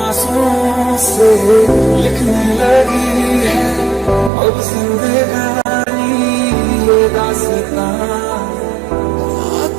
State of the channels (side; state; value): left; drops out; at 4.3 s